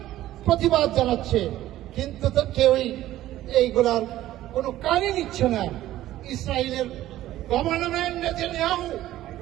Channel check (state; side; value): quieter; left; 14.3 dB